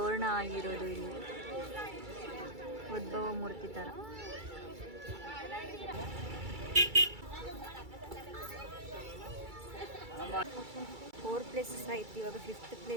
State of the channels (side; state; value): left; late; 2.3 ms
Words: ಆಗಿರೋದು ಇಲ್ಲಿ ಉದ್ಭವ ಮೂರ್ತಿ ಥರ. ಫೋರ್ ಪ್ಲೇಸಸ್ ಆಯ್ತು, ಇವಾಗ 5th